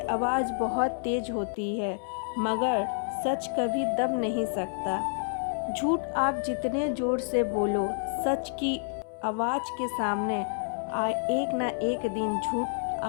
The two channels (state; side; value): silent; right; 59 dB below the other